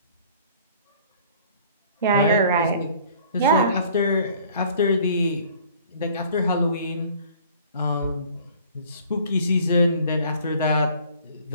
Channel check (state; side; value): inverted; both; correlation -0.52